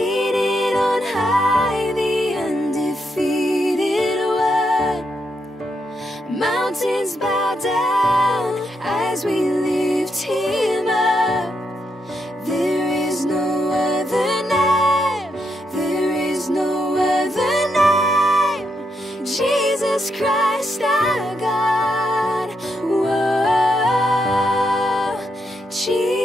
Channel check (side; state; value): both; normal; correlation 0.80